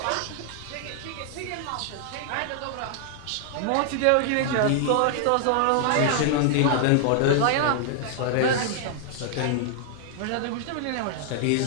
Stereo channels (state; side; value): different; both; correlation 0.00